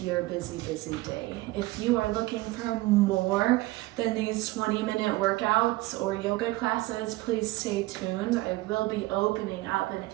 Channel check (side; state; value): left; quieter; 19.5 dB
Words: your busy day. If you are looking for more than these 20-minute workouts or yoga classes, please stay tuned. I will be opening up an